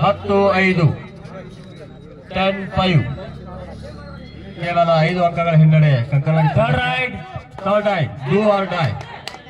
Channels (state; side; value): identical; both; correlation 1.00